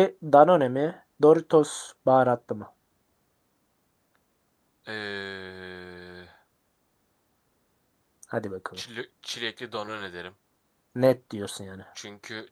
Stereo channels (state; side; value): identical; both; correlation 1.00